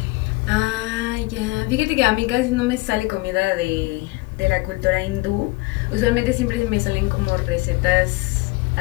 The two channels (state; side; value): quieter; right; 22.8 dB